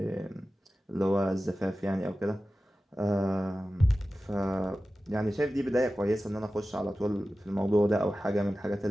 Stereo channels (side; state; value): both; normal; correlation 0.95